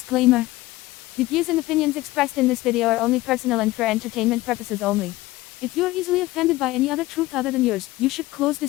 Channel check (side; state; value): right; quieter; 18.5 dB